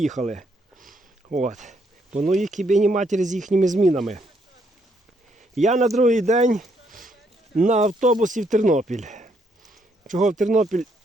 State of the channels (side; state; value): both; normal; correlation 0.73